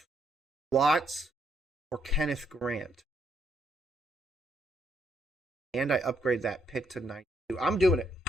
Watts or Kenneth Grant. And I upgrade that pick to 92. I'm doing it.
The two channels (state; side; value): normal; both; correlation 0.74